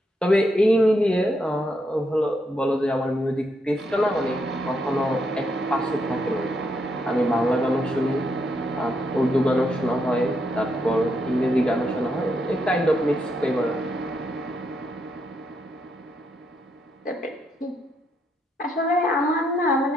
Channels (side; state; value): both; normal; correlation 0.78